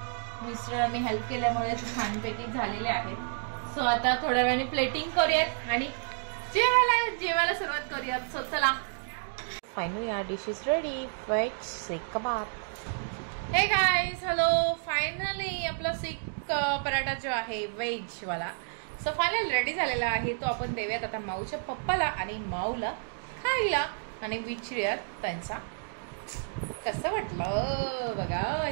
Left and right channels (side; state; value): left; silent; digital silence